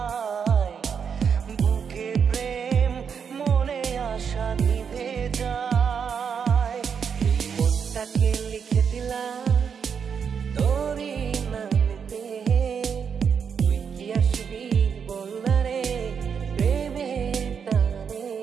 লিখে দিলাম তোরই নামেতে তুই কি আসবি বলনা রে প্রেমের টানে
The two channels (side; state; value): left; quieter; 6.8 dB